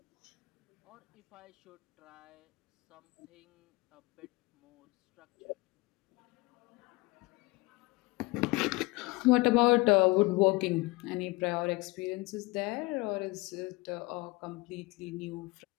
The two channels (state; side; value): quieter; right; 23.6 dB